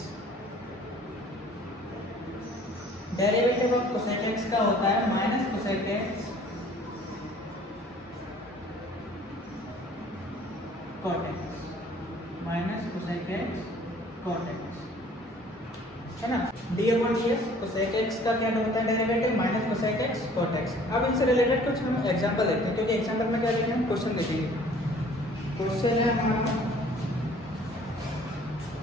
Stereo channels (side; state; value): both; normal; correlation 0.53